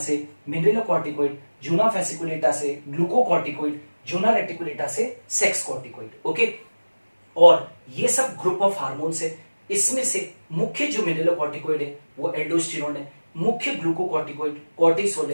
मिनरलोकॉर्टिकॉइड, जूना फेसिकुलेटा से ग्लूकोकॉर्टिकॉइड, जूना रेटिकुलेटा से सेक्स कॉर्टिकॉइड। ओके, और ये सब ग्रुप ऑफ हार्मोन्स है। इसमें से मुख्य जो मिनरलोकॉर्टिकॉइड है वो एल्डोस्टेरोन है, मुख्य ग्लूकोकॉर्टिकॉइड कॉर्टिसोल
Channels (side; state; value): both; inverted; correlation -1.00